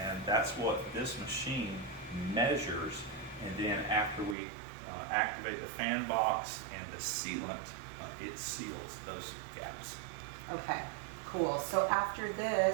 that's what this machine measures. And then after we activate the fan box and the sealant, it seals those gaps. Okay, cool. So after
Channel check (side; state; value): left; drops out; at 4.4 s